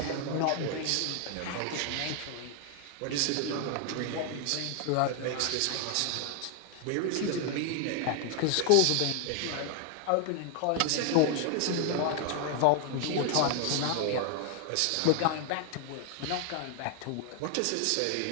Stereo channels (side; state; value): both; different; correlation 0.00